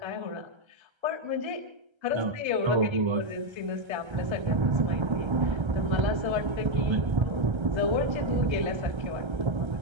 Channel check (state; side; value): late; left; 1.3 ms